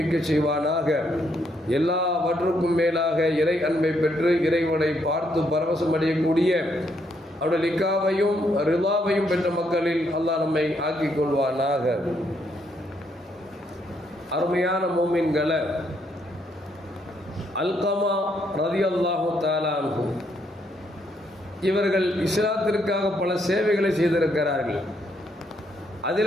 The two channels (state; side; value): normal; both; correlation 0.74